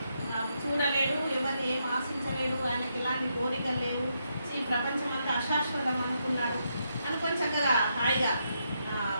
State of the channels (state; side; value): inverted; both; correlation -0.80